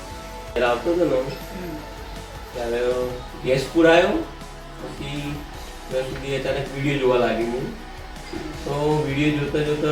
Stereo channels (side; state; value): both; identical; correlation 1.00